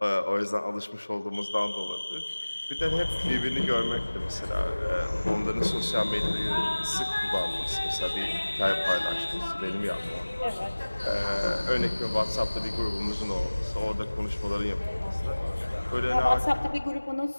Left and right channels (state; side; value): inverted; both; correlation -1.00